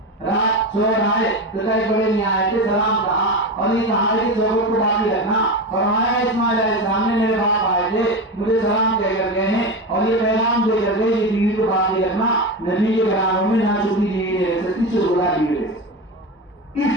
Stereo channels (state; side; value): normal; both; correlation 0.21